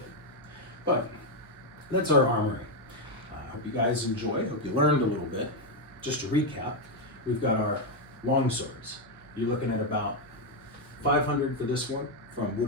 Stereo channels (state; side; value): noise; right; hum, 27 dB below the sound